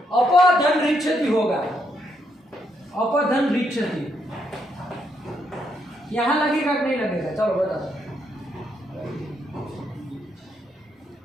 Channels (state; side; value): normal; both; correlation 0.77